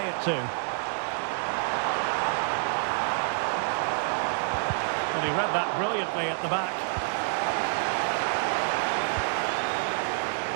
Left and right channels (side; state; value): left; silent; digital silence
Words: it to? And he read that brilliantly at the back.